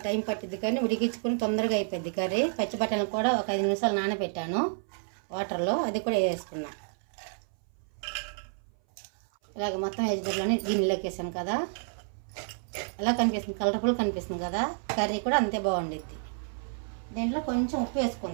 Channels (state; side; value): silent; left; 58 dB below the other